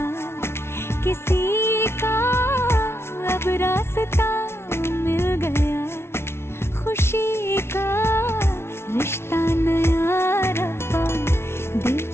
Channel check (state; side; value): late; right; 0.12 ms